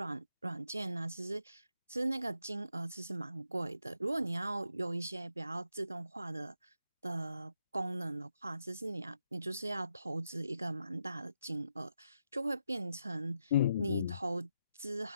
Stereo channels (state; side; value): inverted; both; correlation -0.83